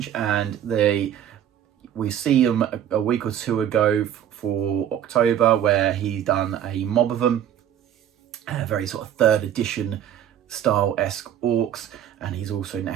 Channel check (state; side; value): quieter; left; 10.2 dB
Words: and we see him a week or two ago for October, where he's done a mob of them, a very sort of 3rd edition style-esque orcs, and